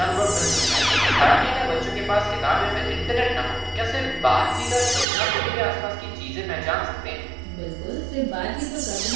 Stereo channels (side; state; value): left; drops out; at 5.1 s